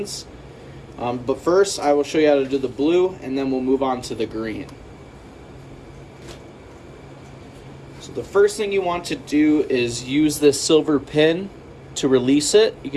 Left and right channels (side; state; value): both; identical; correlation 1.00